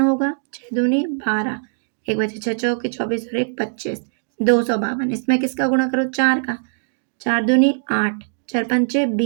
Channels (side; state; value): left; silent; digital silence